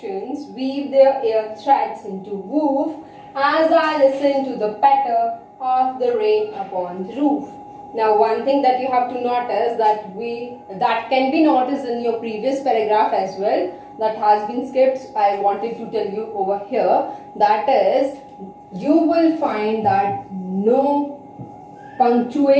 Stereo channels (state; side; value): identical; both; correlation 1.00